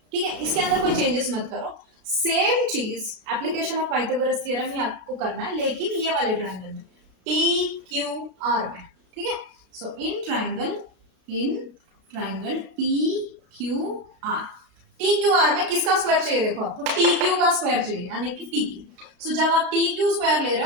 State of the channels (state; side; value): late; left; 32 ms